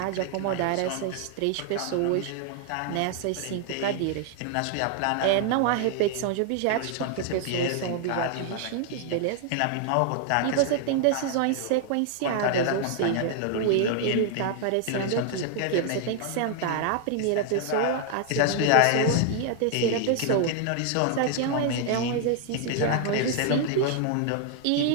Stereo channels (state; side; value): different; both; correlation 0.00